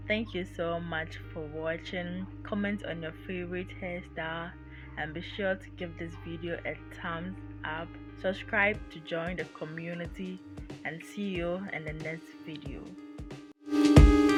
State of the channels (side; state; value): both; identical; correlation 1.00